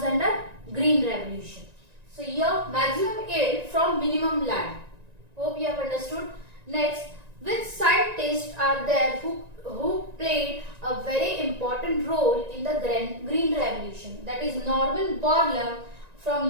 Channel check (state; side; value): late; left; 1.9 ms